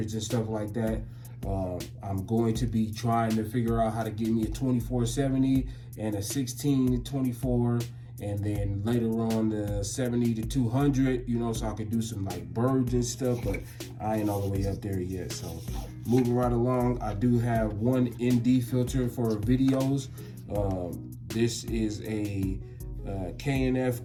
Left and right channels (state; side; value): identical; both; correlation 1.00